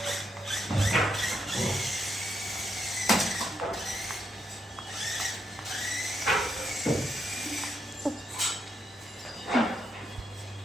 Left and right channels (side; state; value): both; normal; correlation 0.80